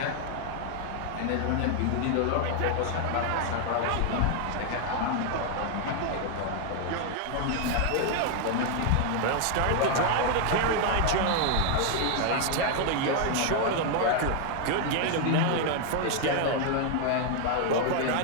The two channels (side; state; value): both; different; correlation 0.00